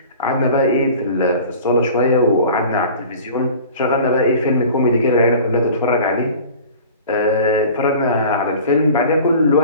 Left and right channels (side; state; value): both; inverted; correlation -0.42